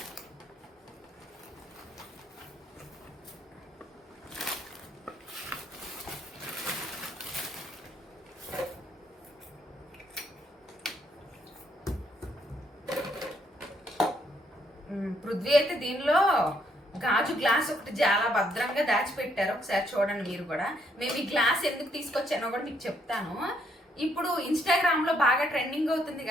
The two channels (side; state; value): both; normal; correlation 0.72